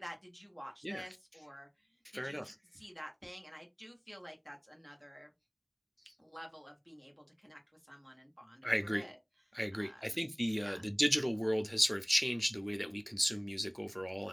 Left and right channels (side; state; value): both; identical; correlation 1.00